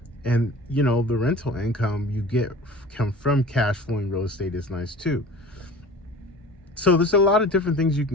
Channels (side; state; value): both; normal; correlation 0.41